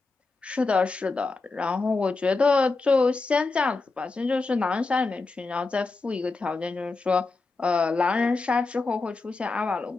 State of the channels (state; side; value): quieter; right; 3.8 dB